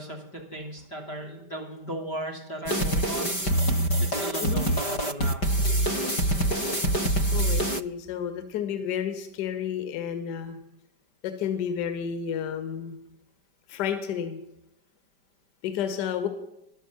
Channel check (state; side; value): late; right; 5.1 ms